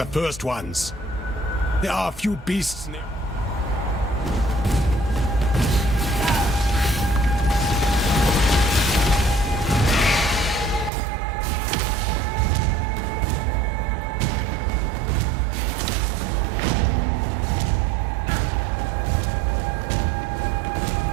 first ones. There are a few beasts near.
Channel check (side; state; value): left; drops out; at 10.9 s